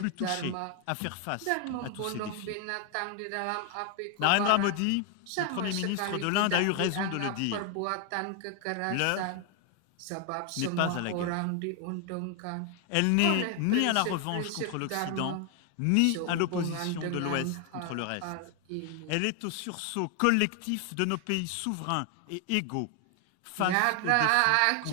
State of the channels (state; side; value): different; both; correlation 0.00